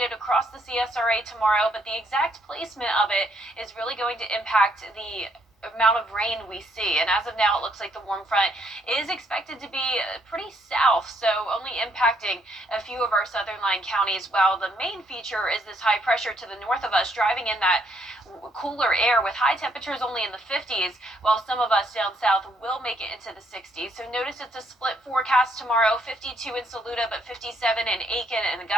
across the CSRA tomorrow, but the exact placement of it is really going to impact the amount of rain we see. And as of now, it looks like the warm front is expected to be pretty south, so only impacting a few of our southern line counties, while the main feature is this high pressure to the north of us driving in that cooler air with high temperatures only in the 50s, while some of us down south will make it into the 60s. So notice it's a split forecast tomorrow, 52 in Saluda, but 57 in Aiken and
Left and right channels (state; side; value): normal; both; correlation 0.71